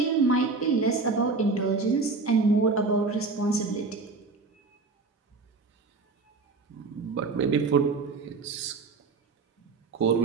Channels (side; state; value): left; quieter; 4.0 dB